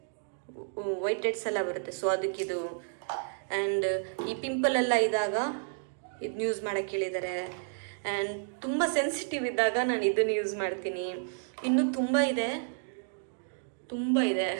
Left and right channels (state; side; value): silent; left; digital silence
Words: ವೈಟ್ ಹೆಡ್ಸ್ ಎಲ್ಲ ಬರುತ್ತೆ. ಸೊ ಅದಕ್ಕಿದು. ಆ್ಯಂಡ್ ಈ ಪಿಂಪಲ್ ಎಲ್ಲ ಇದ್ದಾಗ ಇದನ್ನ ಯೂಸ್ ಮಾಡೋಕ್ಕೆ ಹೇಳಿದ್ದಾರೆ. ಆ್ಯಂಡ್ ತುಂಬ ಸೆನ್ಸಿಟಿವ್ ಇದ್ದಾಗ ನಾನು ಇದನ್ನು ಯೂಸ್ ಮಾಡ್ತೀನಿ. ಇನ್ನೂ ತುಂಬ ಇದೆ.